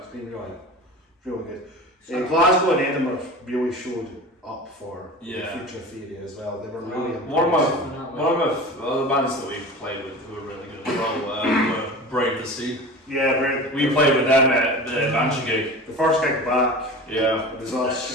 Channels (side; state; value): both; normal; correlation 0.34